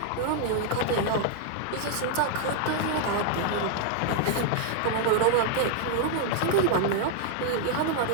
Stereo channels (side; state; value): both; different; correlation -0.01